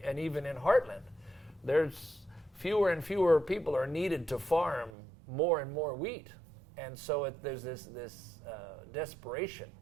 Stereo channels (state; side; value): drops out; left; at 4.9 s